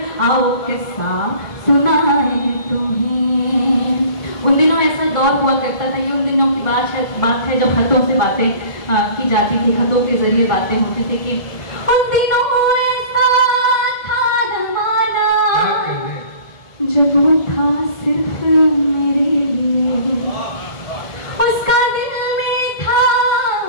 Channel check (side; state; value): right; late; 1.7 ms